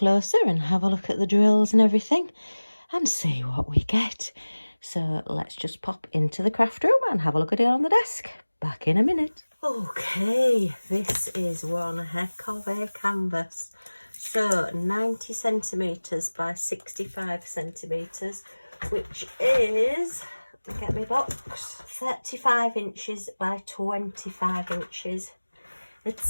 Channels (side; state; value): both; inverted; correlation -1.00